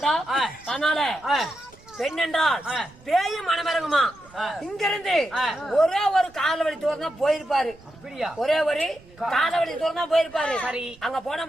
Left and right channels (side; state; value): right; noise; rumble, 26 dB below the sound